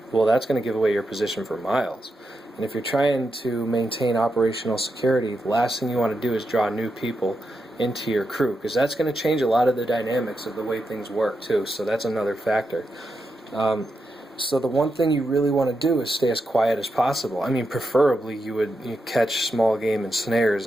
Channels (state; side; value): normal; both; correlation 0.86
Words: well, that's going to give away your position for miles. And if you're trying to maintain operational security, the last thing you want to do is draw new people into your crew, because that's going to change a lot of the dynamics of the way things work too. So that's another factor. So the one thing you really want to do is stay as quiet as possible. I mean, preferably you catch small game and